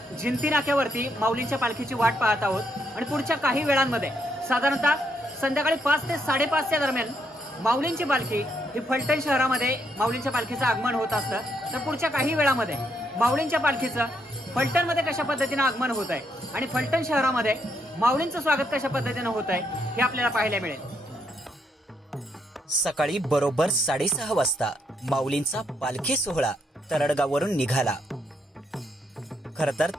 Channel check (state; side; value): normal; both; correlation 0.76